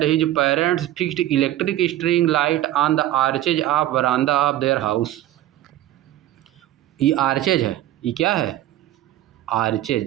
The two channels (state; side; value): quieter; left; 13.8 dB